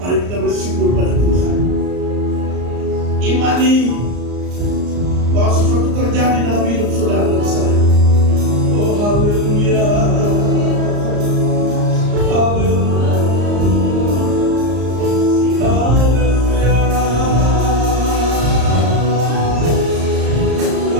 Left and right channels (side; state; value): left; late; 34 ms